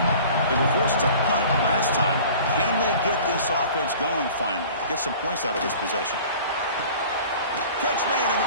They were forced to punt last time. Can they get this offense going finally? Get some points out of this possession. Catch made on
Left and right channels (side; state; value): both; inverted; correlation -0.45